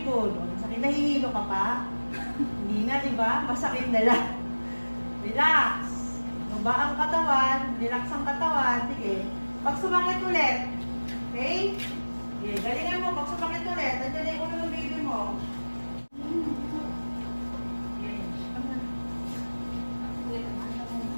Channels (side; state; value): both; inverted; correlation -1.00